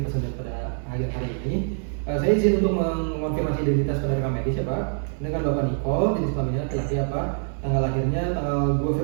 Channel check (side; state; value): left; silent; 56 dB below the other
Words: pesantren pada akhir hari ini. Saya izin untuk mengonfirmasi identitas pada rekam medis ya Pak. Dengan Bapak Nicole, jenis kelaminnya laki-laki ya Pak. Tanggal lahirnya tanggal 2